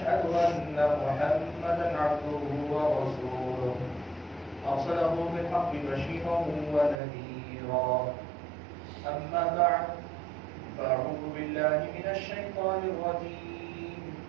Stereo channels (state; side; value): drops out; left; at 7.0 s